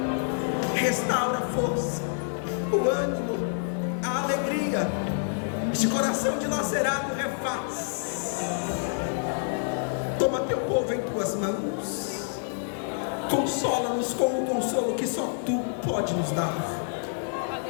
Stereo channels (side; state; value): right; silent; digital silence